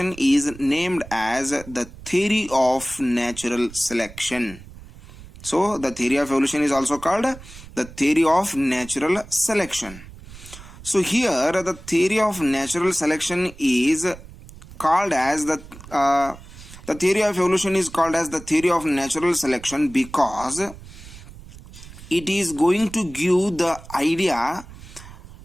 is named as the theory of natural selection. So the theory of evolution is also called the theory of natural selection. So here the theory of natural selection is called as the theory of evolution is called as the theory of natural selection because it is going to give the idea,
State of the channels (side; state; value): right; noise; rumble, 17 dB below the sound